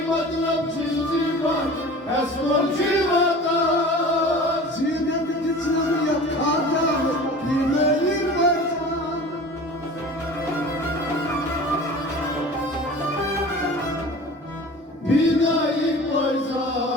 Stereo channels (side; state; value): both; normal; correlation 0.39